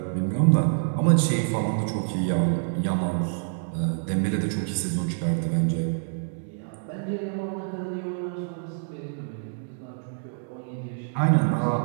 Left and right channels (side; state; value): left; silent; digital silence